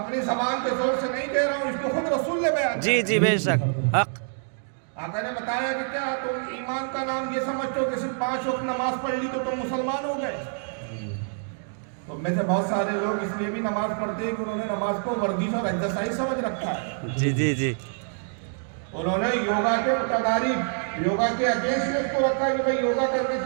زبان کے زور سے نہیں کہہ رہا ہوں، اس کو خود رسول نے بیان کیا۔ جی بے شک، حق۔ آقا نے بتایا کہ کیا تم ایمان کا نام یہ سمجھتے ہو کہ صرف 5 وقت نماز پڑھ لی تو تم مسلمان ہو گئے؟ تو میں سے بہت سارے لوگ اس لیے بھی نماز پڑھتے ہیں کہ انہوں نے نماز کو ورزش اور ایکسرسائز سمجھ رکھا ہے۔ جی۔ انہوں نے یوگا کے متدارک، یوگا کے اگینسٹ اس کو رکھا کہ بھئی یوگا کرنے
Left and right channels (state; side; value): silent; left; 61 dB below the other